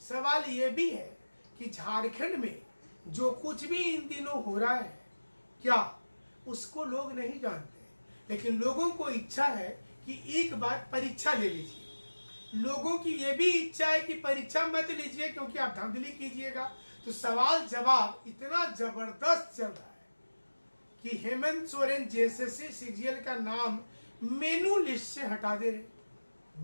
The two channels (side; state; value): both; inverted; correlation -1.00